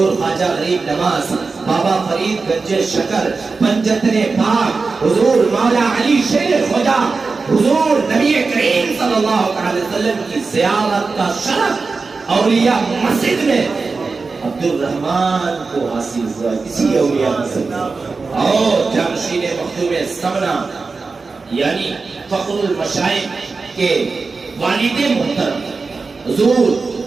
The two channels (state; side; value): quieter; left; 4.3 dB